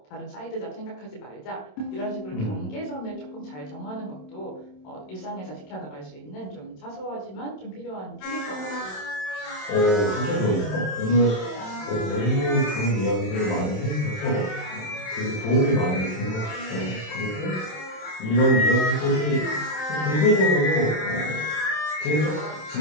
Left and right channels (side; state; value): right; late; 27 ms